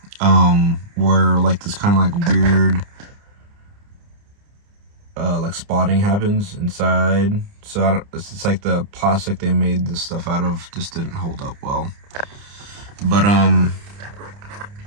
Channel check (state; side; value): late; left; 29 ms